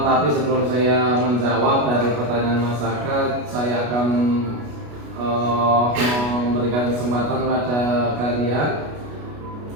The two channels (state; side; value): late; left; 33 ms